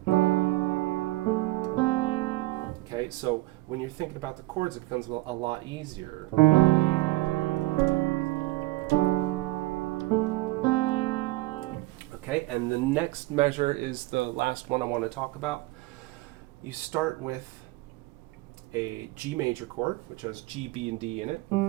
Okay, so when you're thinking about the chords, it becomes a lot easier. Okay, and the next measure is the last one I want to talk about. You start with a G major chord, which has G, B, and D in it.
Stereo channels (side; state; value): left; quieter; 20.2 dB